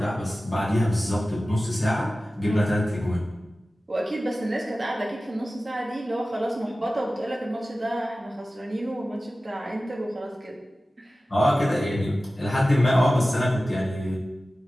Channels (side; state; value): both; normal; correlation 0.96